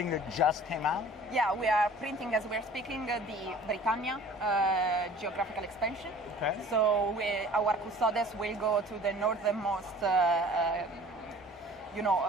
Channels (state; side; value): normal; both; correlation 0.47